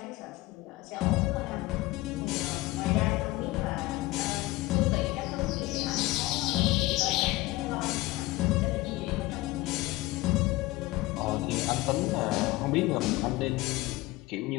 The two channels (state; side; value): quieter; right; 19.5 dB